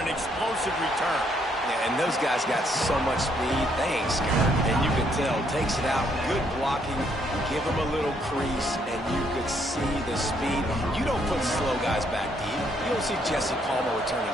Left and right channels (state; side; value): normal; both; correlation 0.70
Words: an explosive return. Yeah, and those guys got so much speed, they ain't scared. And you can tell, takes it out, good blocking, give him a little crease, and you could see the speed. You don't put slow guys back deep. You don't see Jesse Palmer returning